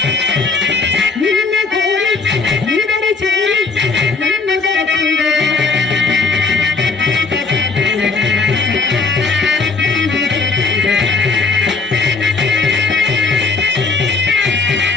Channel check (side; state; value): right; quieter; 4.3 dB